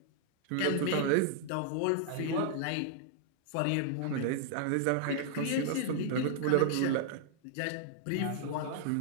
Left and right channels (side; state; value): both; different; correlation -0.01